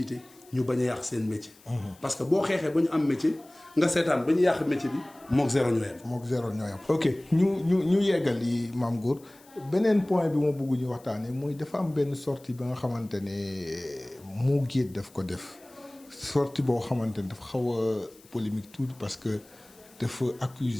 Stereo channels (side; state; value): left; noise; hiss, 26 dB below the sound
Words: ñu bañ a yàq seen métier. parce que boo xeexee ba ñu am métier nga seetaan ba ñu yàq métier bi mook zéro ñoo yem. mook zéro ñoo yem. ok ñu yeggal yi Mame Goor beneen point bi ma bëgg ñu waxtaanee mooy dafa am benn sortie ba nga xamante ne Mo Gates daf ko def sortie boo xamante ne dafa xaw a polémique tuuti parce que dafa